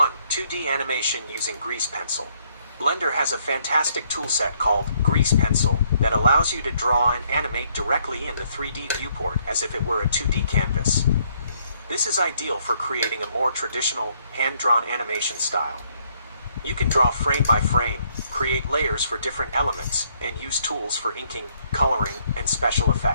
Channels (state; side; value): inverted; both; correlation -0.68